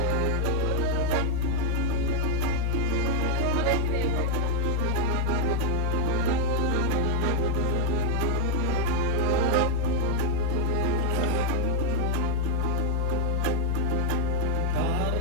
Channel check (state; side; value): different; both; correlation 0.01